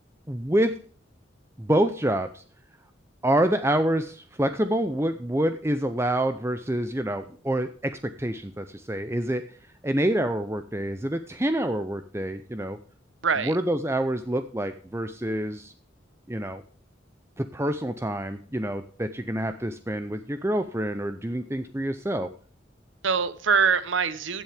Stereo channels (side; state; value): both; normal; correlation 0.71